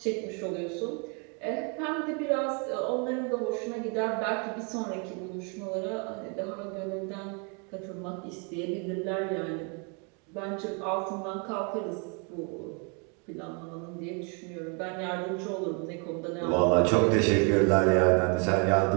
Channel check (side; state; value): left; quieter; 35.6 dB